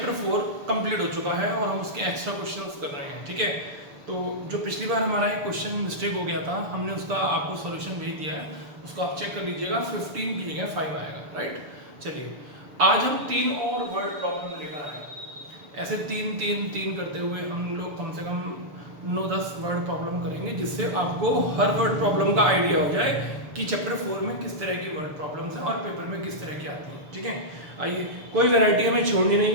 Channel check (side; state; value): left; late; 6.9 ms